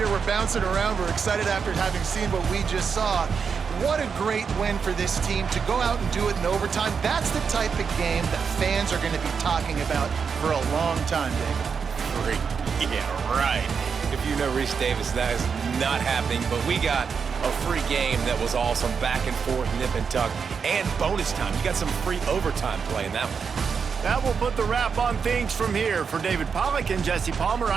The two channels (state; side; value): quieter; left; 6.1 dB